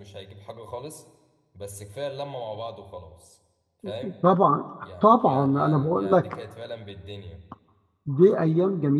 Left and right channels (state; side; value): identical; both; correlation 1.00